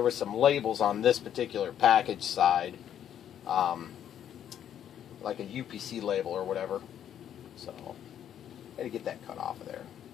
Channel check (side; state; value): right; quieter; 9.9 dB